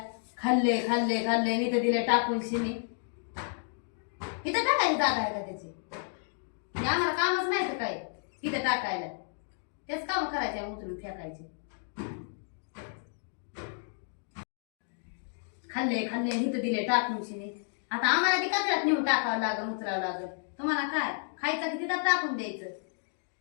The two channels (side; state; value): right; silent; digital silence